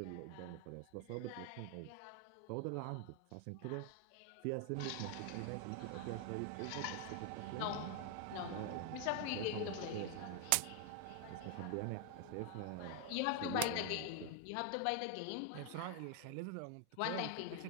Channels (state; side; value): different; both; correlation 0.00